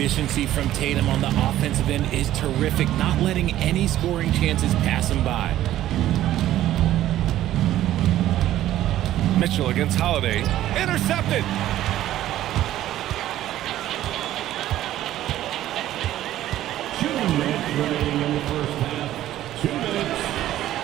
from Tatum on the offensive end is terrific, not letting any scoring chances pass him by. Mitchell against Holiday. Intercepted.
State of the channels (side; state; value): left; quieter; 13.4 dB